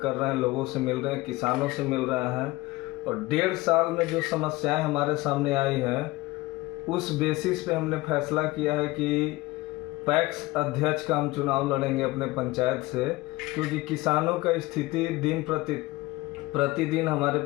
कर रहे हैं, लोगों से मिल रहे हैं, किसानों से मिल रहे हैं और 1.5 साल में जो समस्याएं हमारे सामने आई हैं उस बेसिस पे हमने फैसला किया है कि पैक्स अध्यक्ष का हम चुनाव लड़ेंगे अपने पंचायत से, क्योंकि किसानों का स्थिति दिन प्रतिदिन हमारे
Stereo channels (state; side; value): quieter; right; 20.3 dB